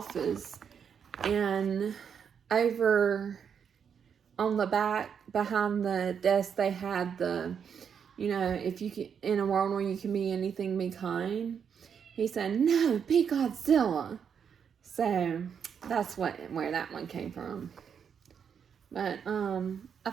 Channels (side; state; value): left; quieter; 7.3 dB